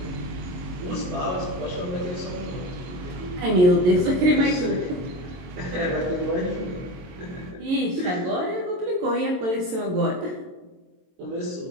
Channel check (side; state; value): left; late; 22 ms